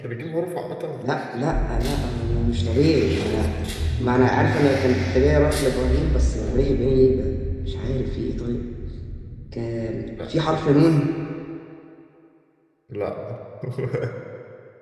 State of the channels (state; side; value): identical; both; correlation 1.00